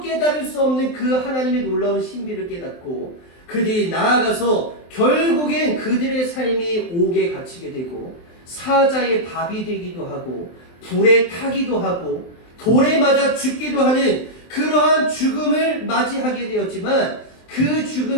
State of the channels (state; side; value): late; right; 23 ms